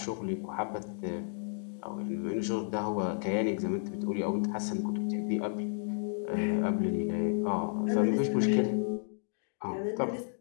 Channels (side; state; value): right; silent; digital silence